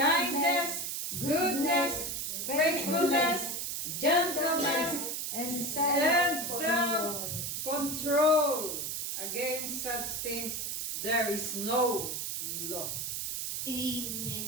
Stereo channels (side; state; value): right; noise; hiss, 3 dB below the sound